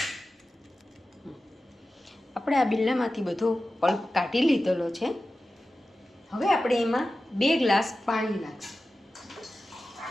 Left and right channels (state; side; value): normal; both; correlation 0.94